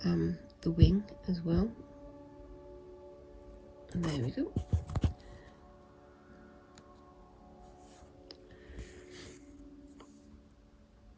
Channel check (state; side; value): identical; both; correlation 1.00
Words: wing as well. And there we go.